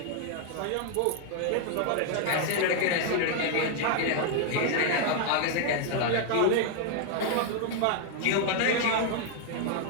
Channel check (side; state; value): both; different; correlation 0.00